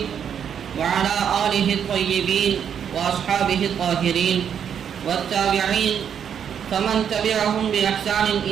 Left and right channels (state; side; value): quieter; left; 8.2 dB